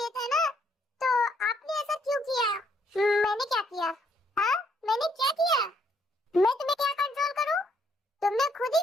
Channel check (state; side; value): normal; both; correlation 0.70